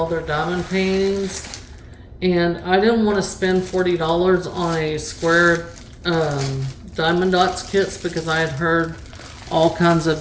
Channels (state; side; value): identical; both; correlation 1.00